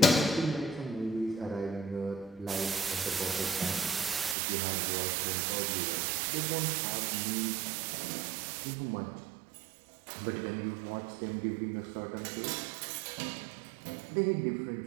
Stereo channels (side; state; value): left; drops out; at 4.4 s